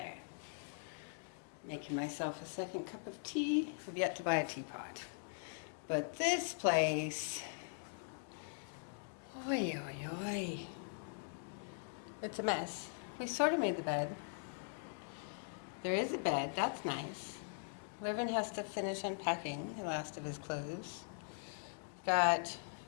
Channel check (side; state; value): right; silent; digital silence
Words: Making myself a second cup of tea. I've yet to buy a teapot. But this place, oi oi oi. It's a mess. We sort of made the bed. There is a bed, that's nice. Wren has to finish unpacking the last of his clothes. We've got